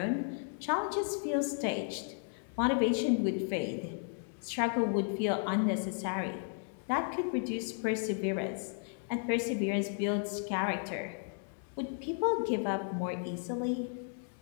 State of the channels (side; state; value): right; silent; 55 dB below the other